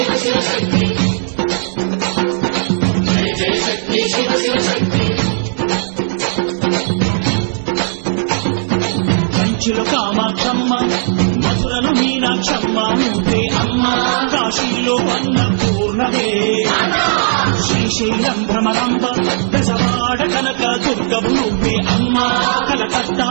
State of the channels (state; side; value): silent; left; digital silence